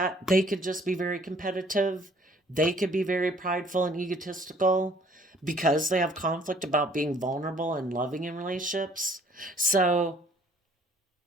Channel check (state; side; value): normal; both; correlation 0.59